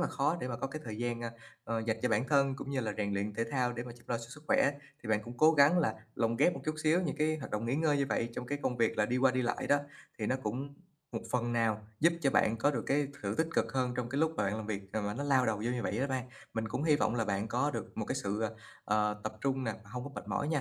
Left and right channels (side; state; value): both; identical; correlation 1.00